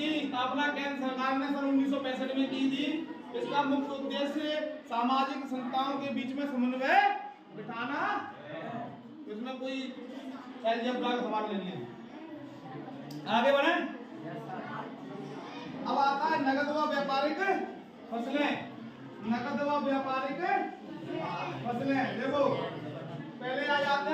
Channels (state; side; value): identical; both; correlation 1.00